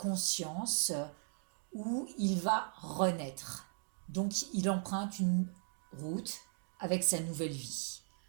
où il va renaître. Donc il emprunte une route avec sa nouvelle vie.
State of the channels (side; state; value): left; silent; 53 dB below the other